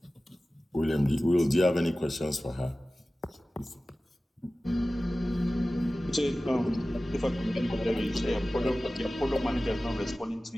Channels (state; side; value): normal; both; correlation 0.96